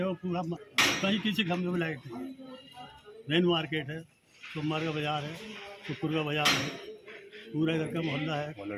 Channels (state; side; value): identical; both; correlation 1.00